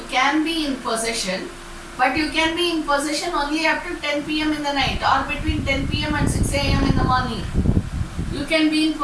be in possession, but you can be in possession only up to 10 p.m. in the night or between 10 p.m. and 6 a.m. in the morning. You can be in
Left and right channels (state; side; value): identical; both; correlation 1.00